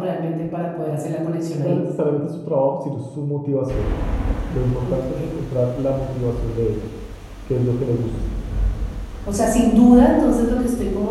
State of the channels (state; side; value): identical; both; correlation 1.00